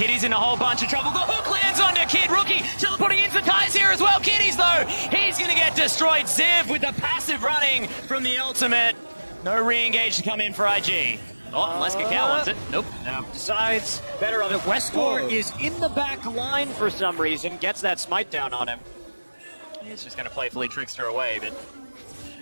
in a whole bunch of trouble. The hook lands on the Kid. Rookie teleporting into ties here as well. Kitty's, though, he's going to get destroyed. Ziv with the passive running from the ultimate. No re-engage to come in for IG. Oh, unless Kakao wants it. Nope. No. Decides better of it. Westcore is in the back line for some reason. Gets that smite down on him. He's just going to playfully trickster away, but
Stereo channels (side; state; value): both; inverted; correlation -1.00